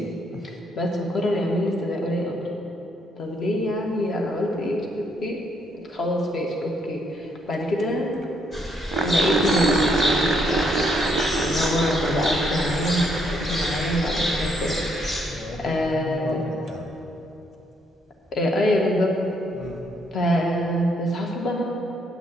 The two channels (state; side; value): normal; both; correlation 0.72